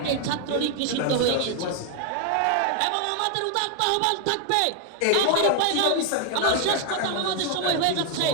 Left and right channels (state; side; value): different; both; correlation 0.00